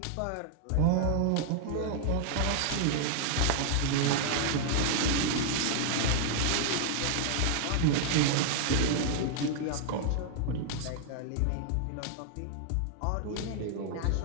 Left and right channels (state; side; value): different; both; correlation -0.01